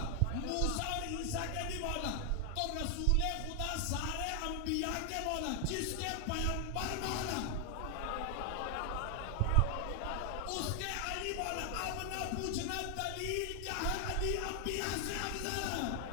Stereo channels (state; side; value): different; both; correlation 0.00